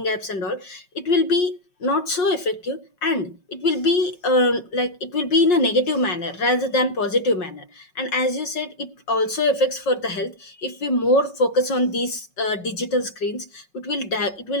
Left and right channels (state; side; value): late; right; 5.6 ms